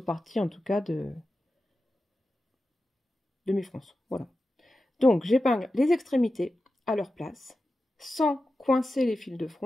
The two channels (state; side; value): normal; both; correlation 0.92